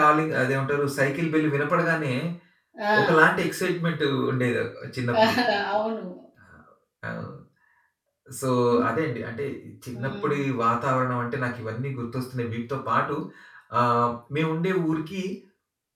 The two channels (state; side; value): identical; both; correlation 1.00